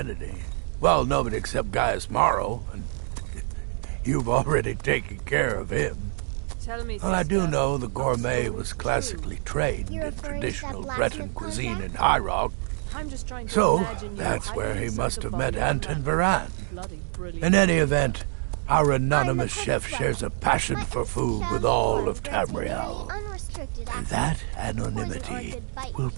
Well, nobody except Gaius Morrow, and you've already taken care of him. Tell me, Well, I do sister, know the Gourmet stories was true. classically trained You're in referring to traditional that Breton blacksmith cuisine in contract? High Rock. I'm just trying to So, imagine you that's hiding where he inside must the have body met of a Anton man. Varan. Bloody brilliant. In any event, our anonymous I'm the chef perfect shares a weapon. passion My for innocent food with childish all form of grants me nearly Tamriel. unrestricted And access. that Poison or a anonymity good bite will usually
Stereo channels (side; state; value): left; silent; 61 dB below the other